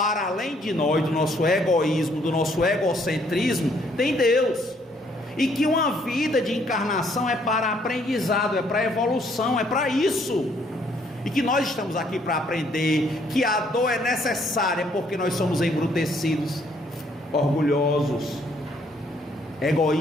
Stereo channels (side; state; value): both; normal; correlation 0.66